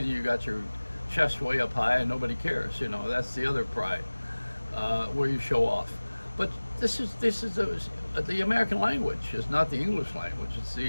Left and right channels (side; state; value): both; inverted; correlation -1.00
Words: you got your chest way up high and nobody cares. You know, that's the other pride, where you show off. But this is the American language. It's not the English language. It's